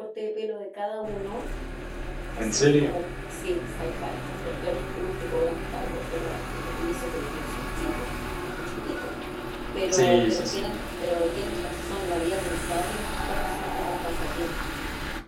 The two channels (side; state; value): both; identical; correlation 1.00